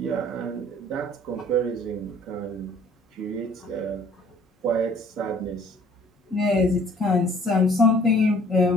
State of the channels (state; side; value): normal; both; correlation 0.55